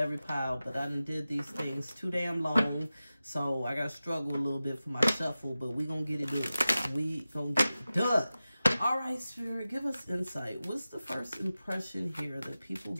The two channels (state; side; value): inverted; both; correlation -0.95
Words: pile, but I done did these things too damn long, so I gotta struggle a little bit for my shuffle, but we gonna get it done. We gonna get it done. All right, Spirit, give us insight. What's the first impression here that people